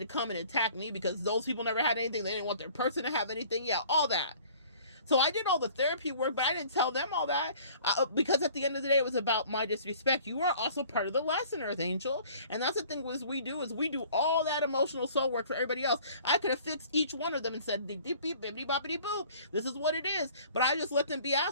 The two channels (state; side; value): inverted; both; correlation -0.51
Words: come and attack me because those people never had anything. They didn't want their person to have anything. Yeah, all that. So I did all the therapy work, but I didn't tell them all that because at the end of the day, it was about my disrespect. You are also part of the lesson, Earth Angel. And that's the thing we do all that emotional soul work for everybody else. I could have fixed each one of them and said, beep, beep, beep, bippity, boppity, boop. This is what it is. But I just let them be